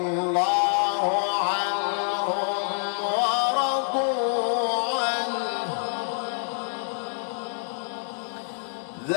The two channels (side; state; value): right; silent; 61 dB below the other